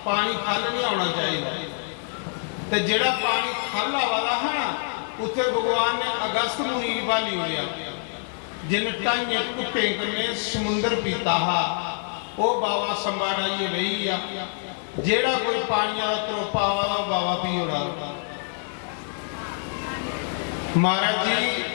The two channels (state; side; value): silent; right; 61 dB below the other